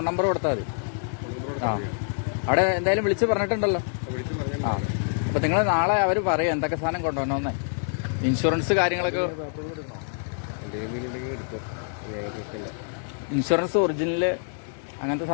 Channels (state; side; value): silent; right; 61 dB below the other